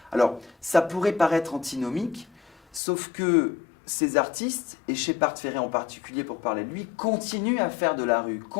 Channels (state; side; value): drops out; right; at 2.8 s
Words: Alors, ça pourrait paraître antinomique, sauf que ces artistes, et Shepard Fairey en particulier pour parler de lui, continuent à faire de la rue,